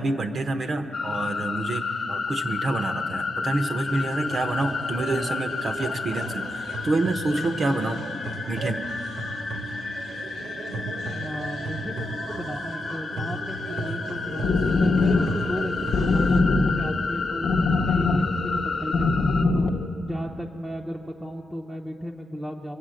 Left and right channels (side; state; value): both; normal; correlation 0.85